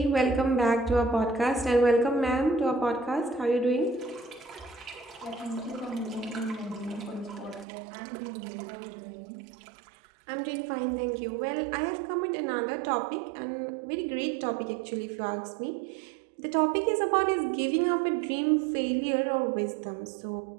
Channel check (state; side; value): drops out; left; at 7.7 s